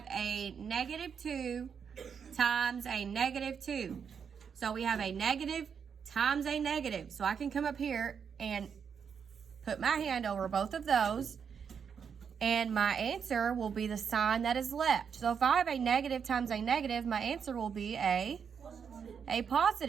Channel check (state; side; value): quieter; left; 6.9 dB